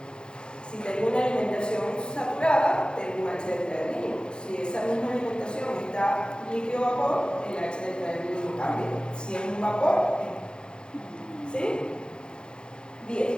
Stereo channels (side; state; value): right; late; 0.049 ms